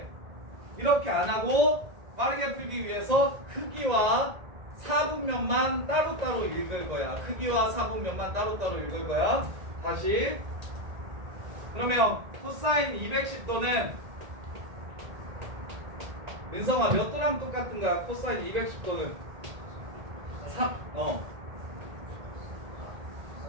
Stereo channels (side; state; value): left; late; 1.8 ms